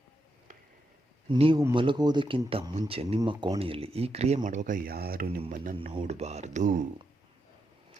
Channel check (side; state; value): both; normal; correlation 0.83